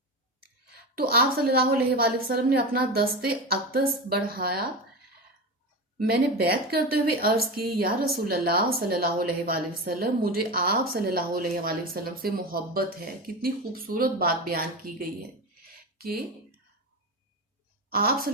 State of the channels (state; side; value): normal; both; correlation 0.22